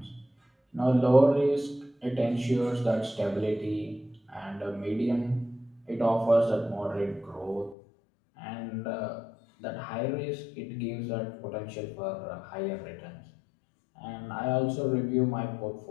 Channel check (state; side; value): drops out; right; at 7.8 s